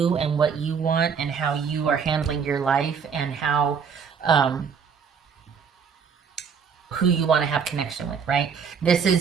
and what you want and how you are handling your life and how, who you want to have connection with, right? This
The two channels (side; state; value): left; quieter; 6.4 dB